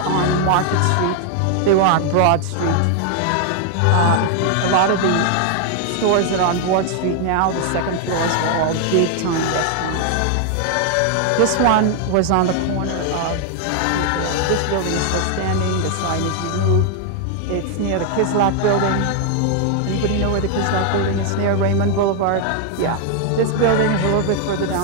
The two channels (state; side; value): different; both; correlation 0.00